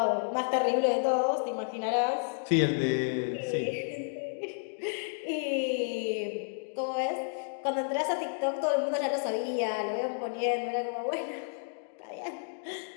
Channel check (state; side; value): silent; right; digital silence